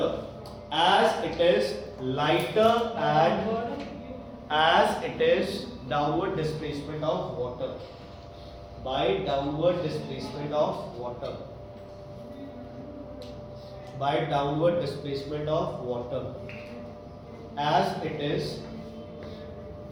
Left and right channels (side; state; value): both; identical; correlation 1.00